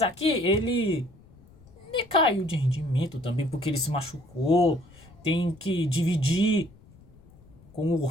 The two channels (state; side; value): noise; left; rumble, 25 dB below the sound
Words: aqui ele caiu de rendimento também porque ele se machucou. Tem que dividir com o